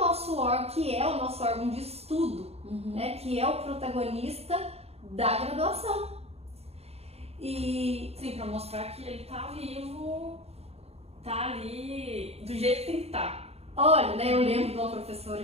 órgão de estudo, né, que é o protagonista da graduação. E sim, para mostrar que ele tá vivo, tá ali do jeito que tem que estar. Olha, né, eu lembro de uma professora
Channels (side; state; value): left; late; 0.30 ms